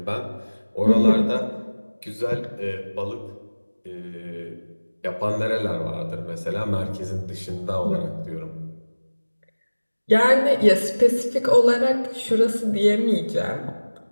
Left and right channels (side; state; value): both; inverted; correlation -1.00